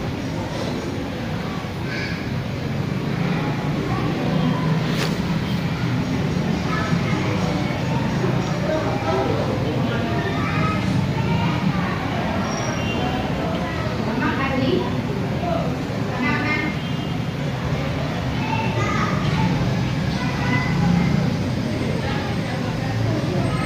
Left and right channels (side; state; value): both; identical; correlation 1.00